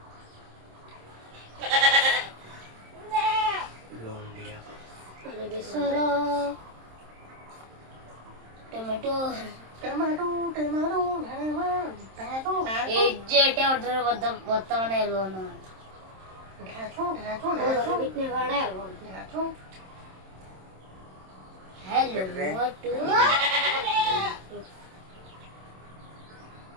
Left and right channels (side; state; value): left; late; 27 ms